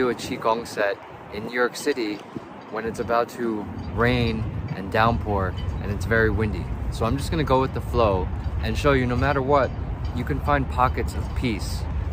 a Qigong set in New York City when it's about to rain and downpour and it's very windy. So I'm just gonna go with the flow and show you no matter what, you can find pockets of peace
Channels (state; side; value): identical; both; correlation 1.00